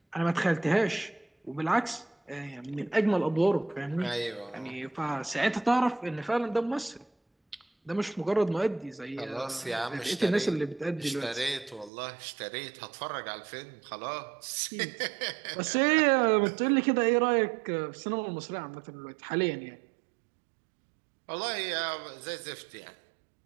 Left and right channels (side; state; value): left; drops out; at 11.9 s